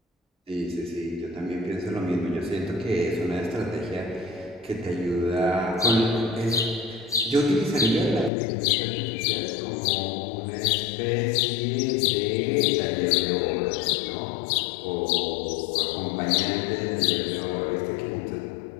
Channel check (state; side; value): drops out; right; at 8.3 s